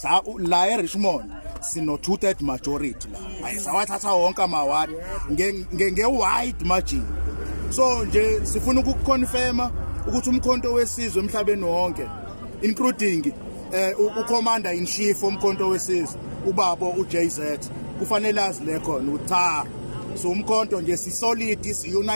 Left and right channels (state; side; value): inverted; both; correlation -1.00